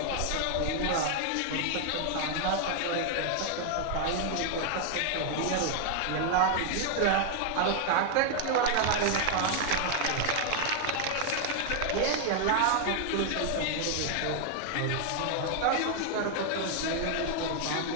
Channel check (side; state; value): both; different; correlation 0.00